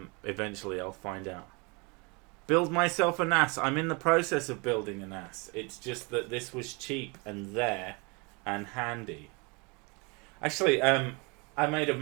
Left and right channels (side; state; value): left; quieter; 29.6 dB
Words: eventually I'll find out. Build myself a NAS. I'm in the process of building a NAS. It's just that this was cheap and there and handy. Actually, I made a